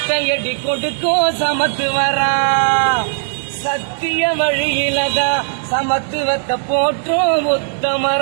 கொடுக்கும் சமத்துவரா சத்திய வழியிலதான் சமத்துவத்தை போற்றும்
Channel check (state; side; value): silent; left; 65 dB below the other